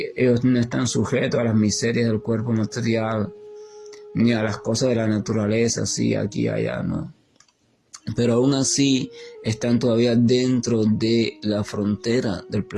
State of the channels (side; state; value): both; identical; correlation 1.00